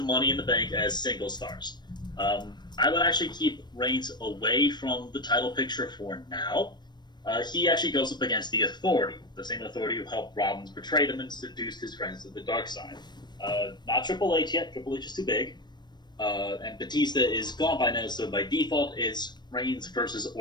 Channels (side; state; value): right; late; 0.21 ms